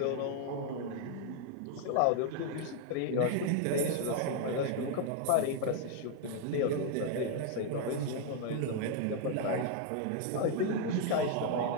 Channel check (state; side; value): different; both; correlation 0.00